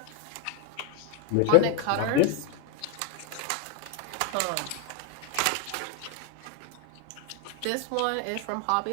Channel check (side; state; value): both; different; correlation 0.01